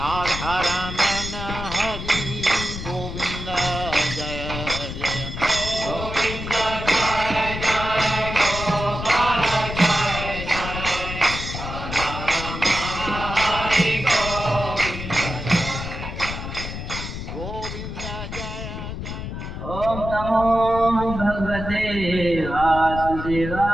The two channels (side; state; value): left; noise; rumble, 7 dB below the sound